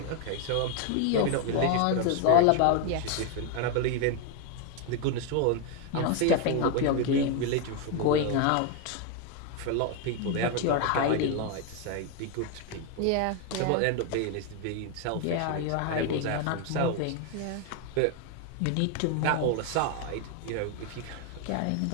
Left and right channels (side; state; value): both; different; correlation 0.01